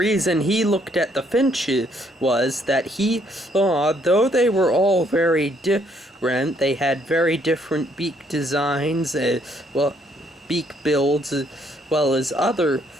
he looked at the finches was that he saw, though they were all very different, they had very different beak designs, beak builds, as well as other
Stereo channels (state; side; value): normal; both; correlation 0.68